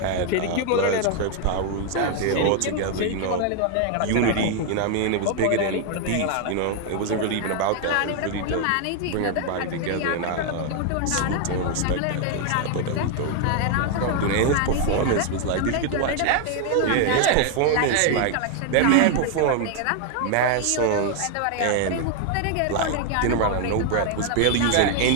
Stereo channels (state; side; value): different; both; correlation 0.00